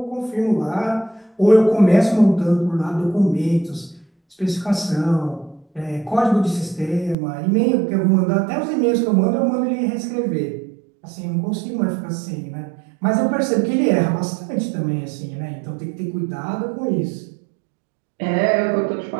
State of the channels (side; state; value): left; drops out; at 7.2 s